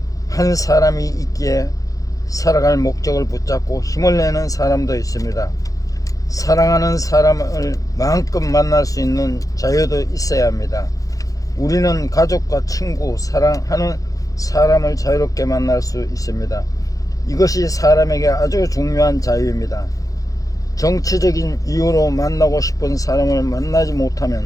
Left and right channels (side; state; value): right; late; 0.17 ms